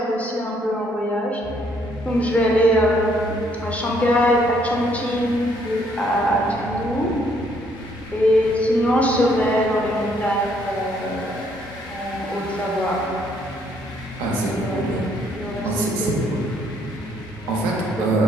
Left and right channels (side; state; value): both; normal; correlation 0.67